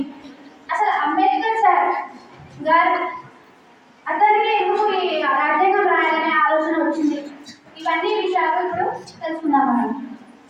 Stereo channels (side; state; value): both; identical; correlation 1.00